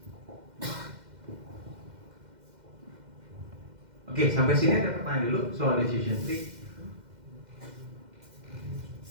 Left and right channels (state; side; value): late; left; 2.1 ms